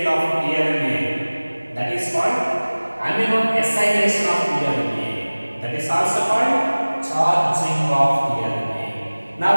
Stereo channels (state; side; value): inverted; both; correlation -1.00